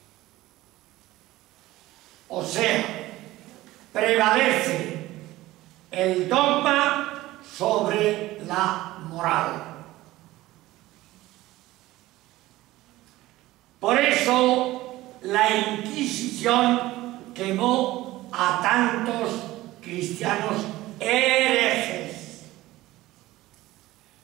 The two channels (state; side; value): quieter; left; 17.2 dB